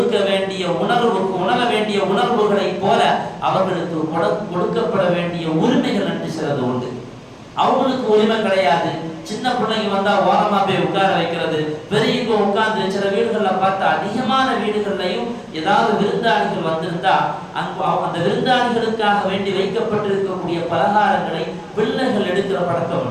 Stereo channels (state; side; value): identical; both; correlation 1.00